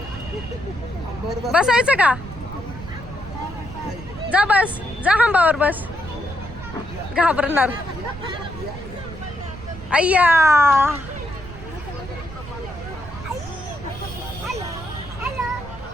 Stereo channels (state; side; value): noise; right; rumble, 14 dB below the sound